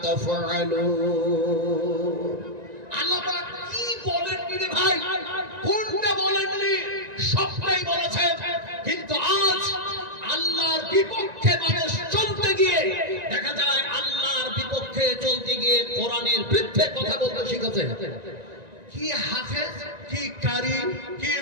তাফআলুন। আল্লাহ পাক কি বলেননি রে ভাই? কোনটা বলেননি? সবটাই বলেছেন। কিন্তু আজ আল্লাহর বিপক্ষে মানুষ চলতে গিয়ে দেখা যায় আল্লাহর বিপক্ষে চলতে গিয়ে কোরআনের বিরুদ্ধে কথা বলতে শিখেছে। কি হাফেজ, কি কারি, কি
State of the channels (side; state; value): left; late; 1.9 ms